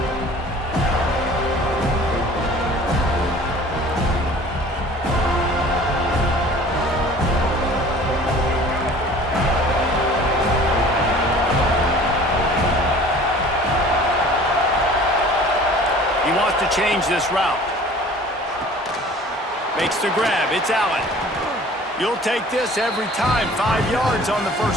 He wants to change this route. Makes the grab. It's Allen. You'll take this every time. 5 yards on the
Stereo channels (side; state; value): both; normal; correlation 0.47